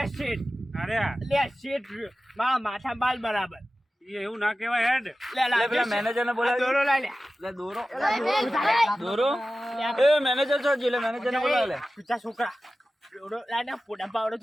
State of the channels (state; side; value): normal; both; correlation 0.95